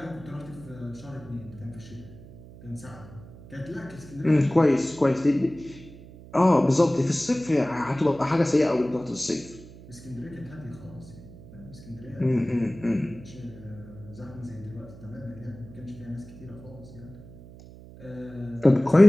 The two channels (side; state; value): right; noise; hum, 18 dB below the sound